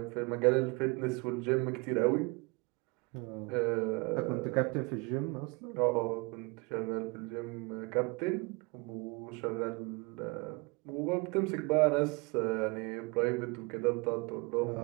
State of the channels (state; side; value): quieter; left; 28.5 dB